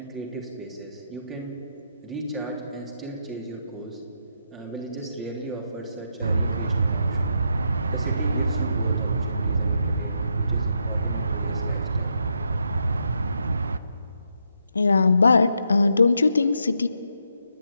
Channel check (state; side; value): inverted; both; correlation -0.80